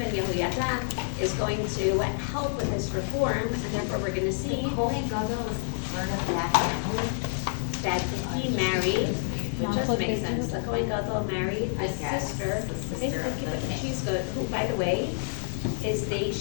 Yehoyada is going to help with this reform, and therefore we're going to see Kohen Gadol was part of that family? that he married, which does make sense. The Kohen Gadol married I the guess, sister. the sister of the king. She's good. Who, by the way,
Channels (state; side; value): silent; right; digital silence